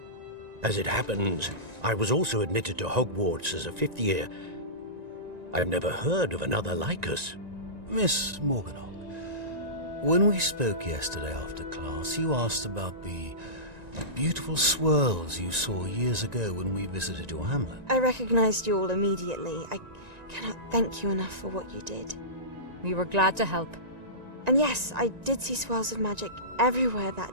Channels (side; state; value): left; late; 1.9 ms